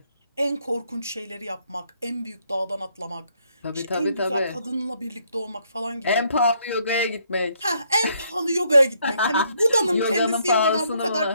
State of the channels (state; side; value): inverted; both; correlation -0.71